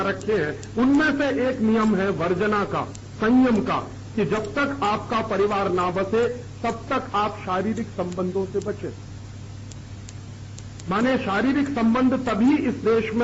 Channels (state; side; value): identical; both; correlation 1.00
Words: रखे हैं। उनमें से एक नियम है वर्जना का, संयम का, कि जब तक आपका परिवार ना बसे तब तक आप शारीरिक संबंधों से बचें। माने शारीरिक संबंध तभी इस देश